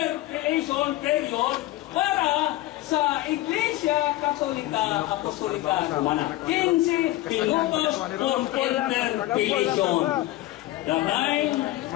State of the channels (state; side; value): quieter; right; 16.7 dB